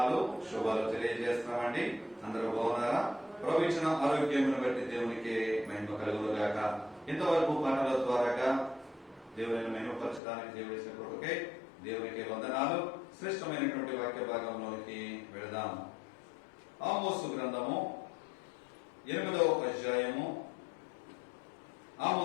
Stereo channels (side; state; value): right; drops out; at 10.2 s